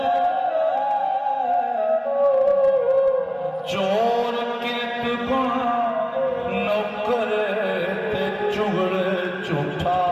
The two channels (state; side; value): identical; both; correlation 1.00